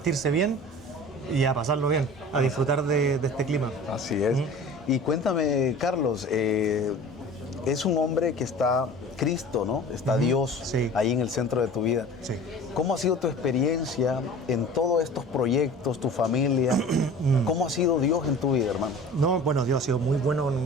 bien y a pasarlo bien, a disfrutar de este clima. Así es. Y cuéntame, Carlos, es un hombre que está Cristo, ¿no? Está Dios Sí. ahí en el centro de tu vida. Sí. ¿Cómo ha sido tu experiencia en todos estos proyectos, tu familia? ¿Cómo ha sido Dios en tu vida, hermano? No, bueno, Dios ha sido muy bueno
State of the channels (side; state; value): both; normal; correlation 0.41